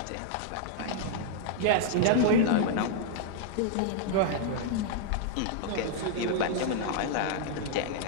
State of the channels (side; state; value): both; different; correlation -0.01